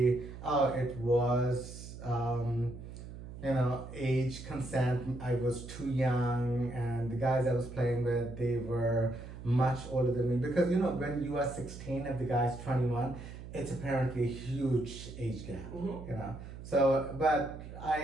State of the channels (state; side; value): noise; right; hum, 12 dB below the sound